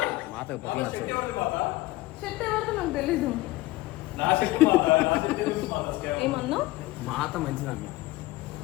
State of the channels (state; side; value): quieter; right; 18.8 dB